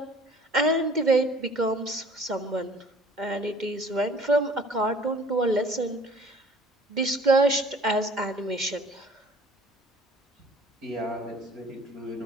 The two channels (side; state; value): both; normal; correlation 0.51